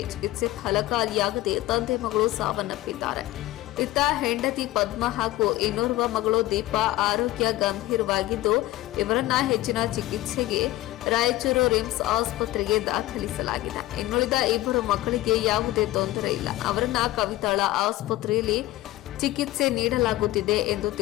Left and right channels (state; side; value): quieter; right; 16.7 dB